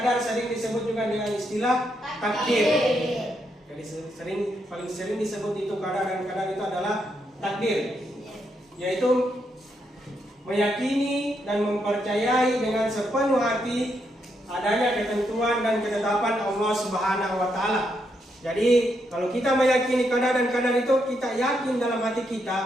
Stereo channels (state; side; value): normal; both; correlation 0.79